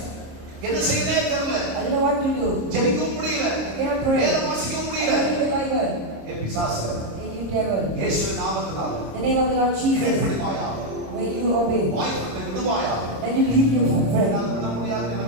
என்ன செய்யவே தெரியல. I don't know what to do. ஜெபிக்கவும் முடியல. I cannot pray. வேதம் வாசிக்கவும் முடியல. I can't read the Bible. ஏ பிசாசு, Hey, you devil. இயேசுவின் நாமத்தினால The name of the Lord Jesus. கீழ்ப்படிவாயாக, When you obey, வாய்ப்பை விடுவாயாக. then you leave your friend. என்னால விட முடியாதுன்னு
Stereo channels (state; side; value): late; left; 26 ms